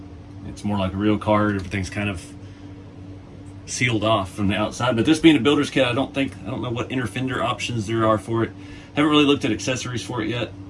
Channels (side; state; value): both; identical; correlation 1.00